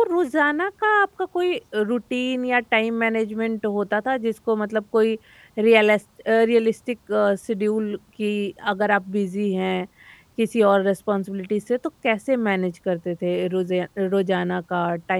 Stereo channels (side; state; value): both; identical; correlation 1.00